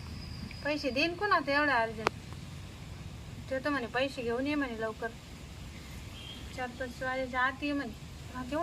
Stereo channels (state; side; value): identical; both; correlation 1.00